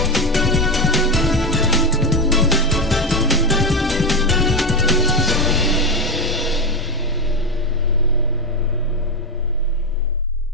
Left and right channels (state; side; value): normal; both; correlation 0.12